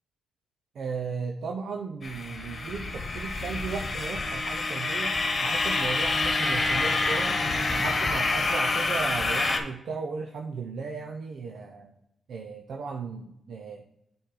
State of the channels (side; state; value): both; normal; correlation 0.85